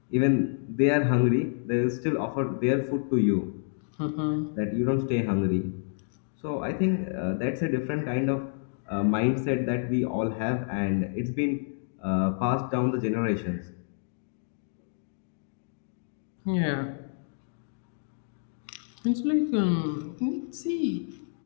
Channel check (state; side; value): silent; right; digital silence